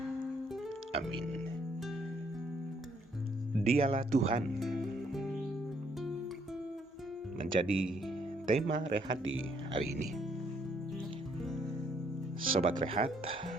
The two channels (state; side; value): normal; both; correlation 0.69